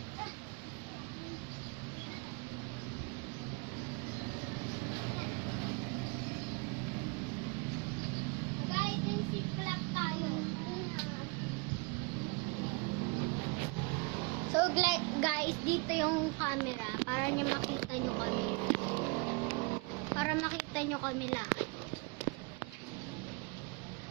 Hide and seek club tayo. So guys, dito yung camera para niya makita nyo kami. Para makita nyo kami lahat.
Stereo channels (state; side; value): quieter; left; 30.8 dB